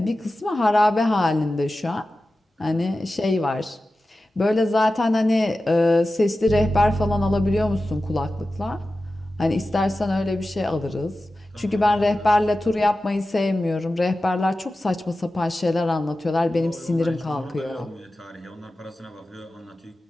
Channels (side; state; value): both; normal; correlation 0.94